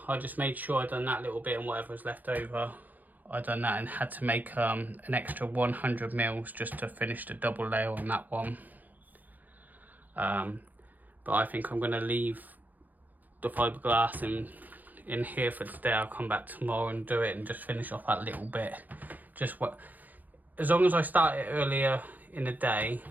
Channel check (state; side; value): late; left; 0.083 ms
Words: just made sure I'd done that little bit, and whatever was left over I done that, and had to make an extra 100 mils just to finish the double layer on that one. But I think I'm going to leave the fiberglass in here for today. I'll come back tomorrow and do it and just finish off that little bit. As long as I start it earlier in the day,